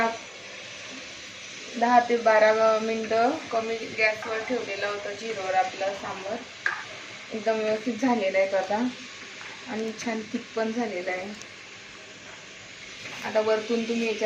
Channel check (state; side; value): identical; both; correlation 1.00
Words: 10 ते 12 मिनिटं कमी गॅसवर ठेवलेलं होतं, झिरोवर आपलं सांबार एकदम व्यवस्थित झालेलं आहे आता, आणि छान थिक पण झालेलं आहे. आता वरतून तुम्ही